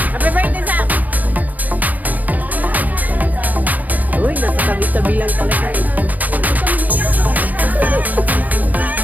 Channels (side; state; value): left; late; 0.081 ms